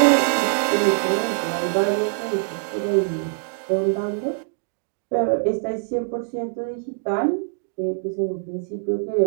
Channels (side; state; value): left; silent; digital silence